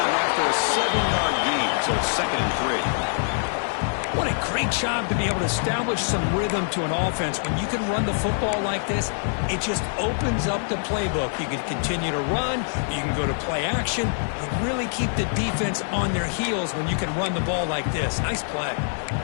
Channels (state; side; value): silent; right; 56 dB below the other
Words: Job to be able to establish some rhythm to an offense. When you can run the football like this, it just opens up the playbook. You can continue to run, you can go to play action, and really keep the defense on their heels when you can run the ball like this. Nice play.